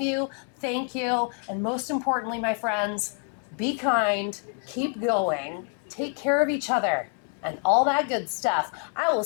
you. Thank you. And most importantly, my friends, be kind, keep going, take care of each other, and all that good stuff. I will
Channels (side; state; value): right; quieter; 39.6 dB